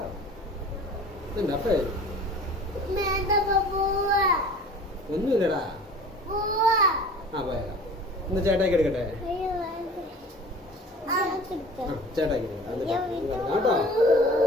ഒന്നുമില്ലടാ. ആ പോയാലോ. ഇന്ന് ചേട്ടാക്കി എടുക്കട്ടെ. ചേട്ടാക്കി കേട്ടോ.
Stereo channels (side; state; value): both; normal; correlation 0.43